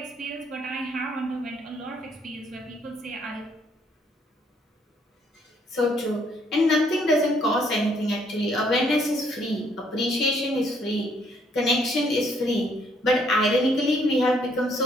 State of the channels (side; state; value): both; normal; correlation 0.68